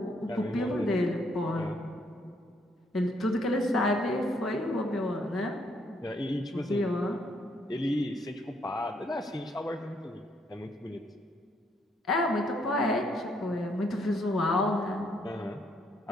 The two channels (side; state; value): both; normal; correlation 0.71